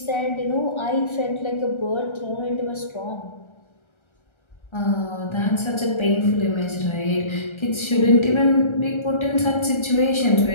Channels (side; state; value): right; late; 1.3 ms